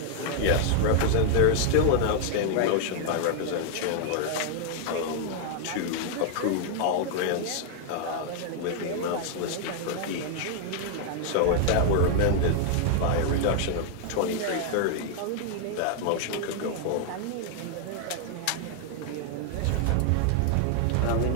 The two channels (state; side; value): different; both; correlation 0.00